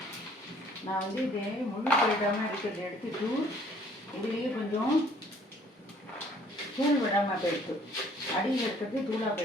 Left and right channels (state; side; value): normal; both; correlation 0.58